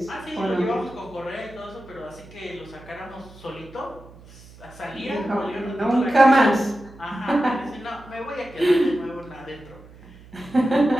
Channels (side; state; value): right; noise; hum, 21 dB below the sound